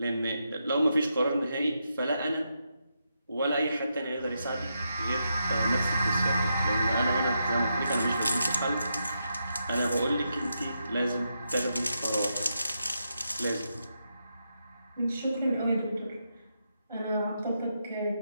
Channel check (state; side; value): inverted; both; correlation -0.84